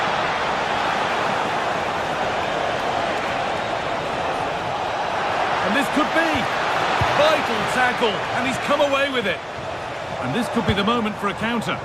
And this could be vital tackle, and he's come away with it. And this could be the moment for a counter.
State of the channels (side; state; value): both; identical; correlation 1.00